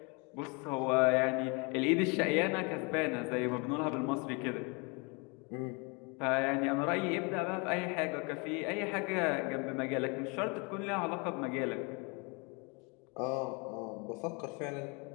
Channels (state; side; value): quieter; right; 31.0 dB